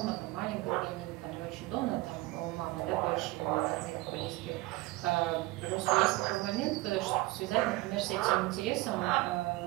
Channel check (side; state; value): left; quieter; 20.1 dB